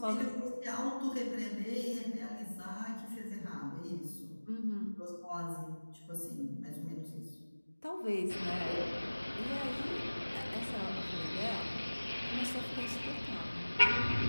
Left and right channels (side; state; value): both; inverted; correlation -1.00